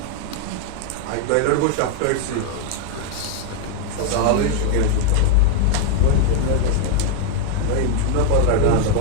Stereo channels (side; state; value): both; different; correlation 0.01